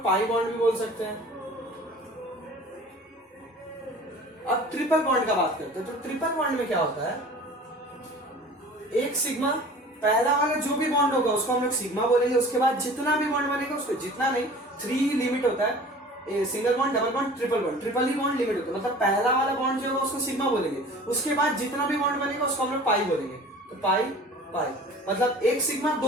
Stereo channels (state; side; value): normal; both; correlation 0.43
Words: पाई बॉन्ड भी बोल सकते हैं। अब ट्रिपल बॉन्ड का बात करते हैं, तो ट्रिपल बॉन्ड में क्या होता है? एक सिग्मा, पहला वाला जो भी बॉन्ड होगा उसको हम लोग सिग्मा बोलेंगे, उसके बाद जितना भी बॉन्ड बनेगा उसको, जितना नहीं, 3 लिमिट होता है, single bond, double bond, triple bond, triple ही बॉन्ड लिमिट होता है। मतलब पहला वाला बॉन्ड जो होगा उसको सिग्मा बोलेंगे, उसके बाद जितना भी बॉन्ड बनेगा उसको हम लोग पाई बोलेंगे। तो पाई पाई मतलब एक सिग्मा